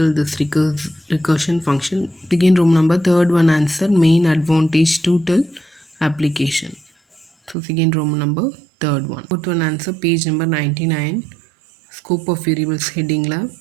this recursion function. Begin room number third one answer main advantage to tell application. So second room number third one. Fourth one answer page number 99. Scope of variables heading la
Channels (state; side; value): drops out; left; at 7.6 s